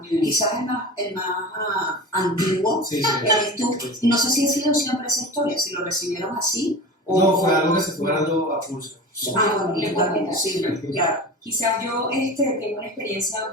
quizás el más antiguo, Sí. eres tú. No sé si ha sido siempre esa historia, si lo recibieron así o... No, fue algo que se fue dando a pulso. Bueno, Le puedo contar. sí, claro. Quizás yo tengo una experiencia un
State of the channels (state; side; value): normal; both; correlation 0.32